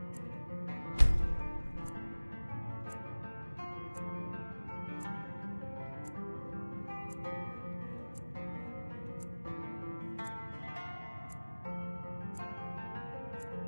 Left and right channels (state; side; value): inverted; both; correlation -1.00